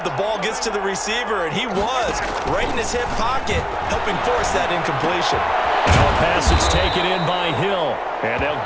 the ball gets to the receiver, and he was right in his hip pocket, helping force that incompletion. Now a pass that's taken in by Hill, and they'll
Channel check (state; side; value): identical; both; correlation 1.00